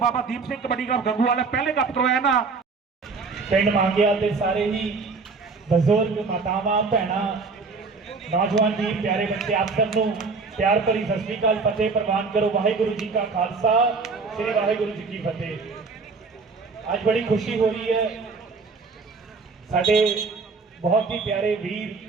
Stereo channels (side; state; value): left; quieter; 4.4 dB